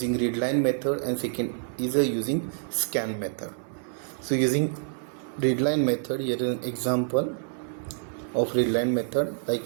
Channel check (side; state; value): left; silent; 60 dB below the other